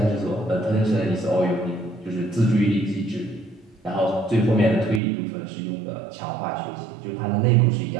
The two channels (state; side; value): drops out; left; at 5.0 s